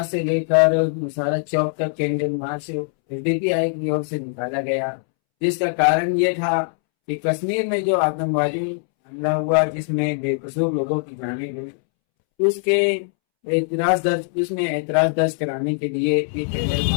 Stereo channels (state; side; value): silent; right; 64 dB below the other